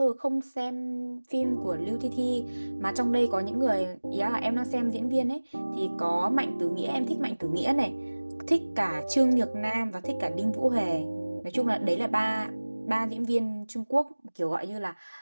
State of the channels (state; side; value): inverted; both; correlation -1.00